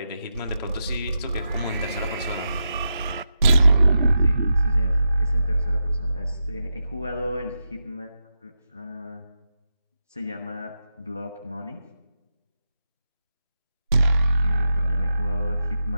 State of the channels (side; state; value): both; inverted; correlation -0.88